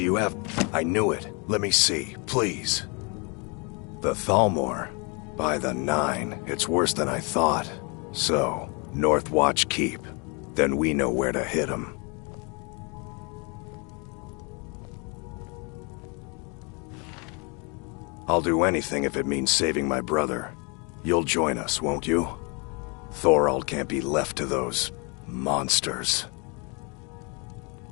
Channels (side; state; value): right; quieter; 32.8 dB